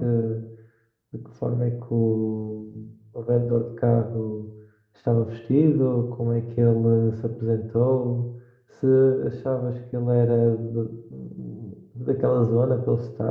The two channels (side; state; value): both; identical; correlation 1.00